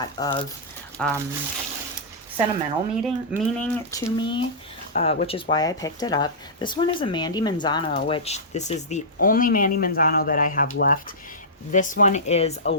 of sentimental meaning to me, which is why I picked it up. This one is a Mandy Manzano, which this is the only Mandy Manzano that I have left. This one is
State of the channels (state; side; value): normal; both; correlation -0.15